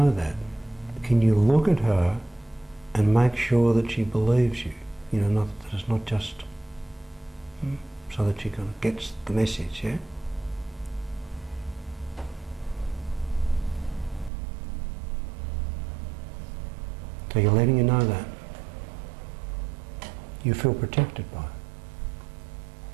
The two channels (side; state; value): left; drops out; at 14.3 s